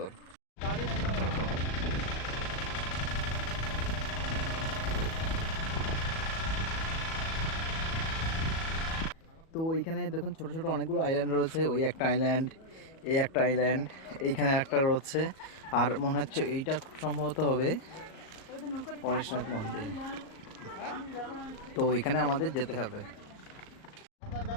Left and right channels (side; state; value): right; late; 37 ms